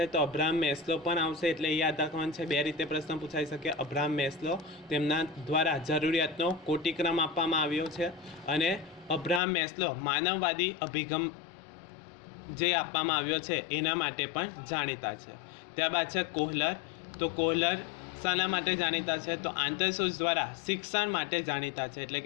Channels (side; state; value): right; drops out; at 9.4 s